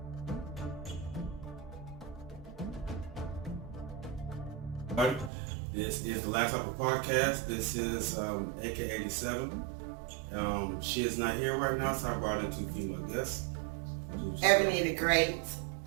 This is the Last Supper Podcast. This is AK87. She is not here right now, so I brought in two female guests. Ebony the Great.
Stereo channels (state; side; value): drops out; left; at 5.3 s